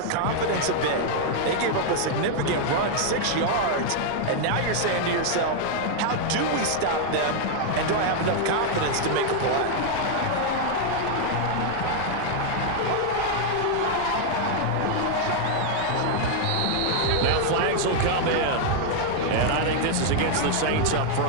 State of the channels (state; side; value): different; both; correlation 0.00